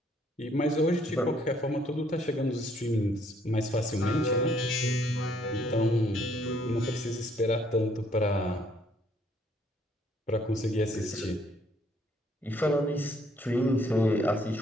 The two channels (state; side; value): normal; both; correlation 0.66